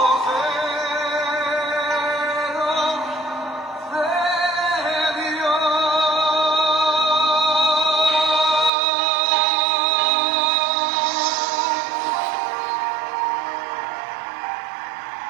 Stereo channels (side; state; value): left; drops out; at 8.7 s